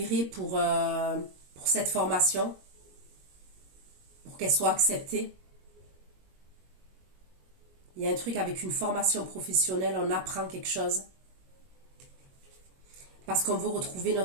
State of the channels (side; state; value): left; late; 22 ms